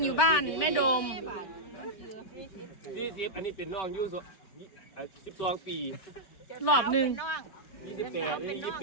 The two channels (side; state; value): right; late; 5.2 ms